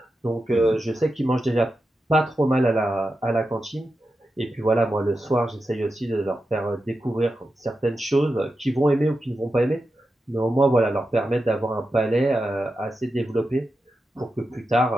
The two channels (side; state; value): both; normal; correlation 0.90